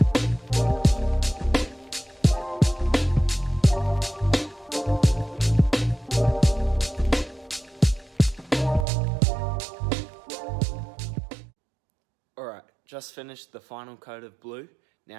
Alright, just finished the final coat of blue,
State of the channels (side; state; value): left; drops out; at 8.8 s